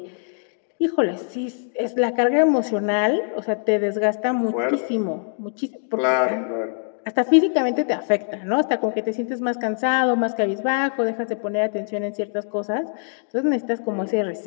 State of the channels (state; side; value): silent; right; 63 dB below the other